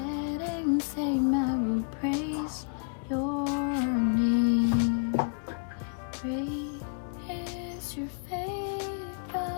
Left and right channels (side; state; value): right; silent; digital silence